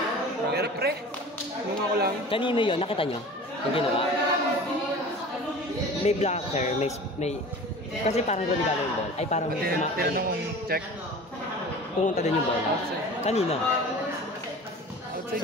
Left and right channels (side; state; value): both; normal; correlation 0.39